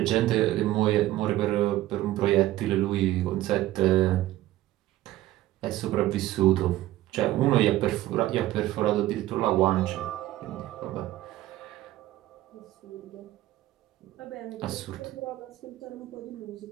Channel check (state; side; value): quieter; left; 15.3 dB